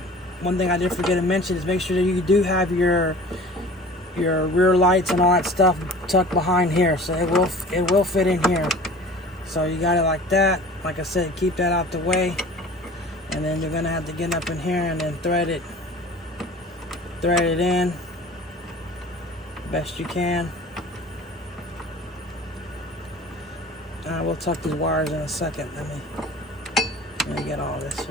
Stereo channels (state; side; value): normal; both; correlation 0.43